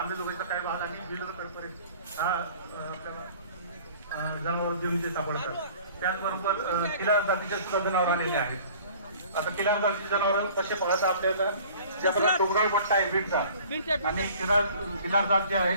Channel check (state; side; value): inverted; both; correlation -0.49